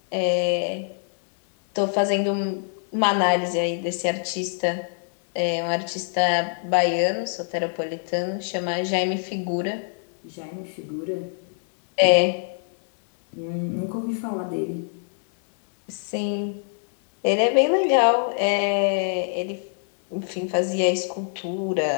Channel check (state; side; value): silent; right; digital silence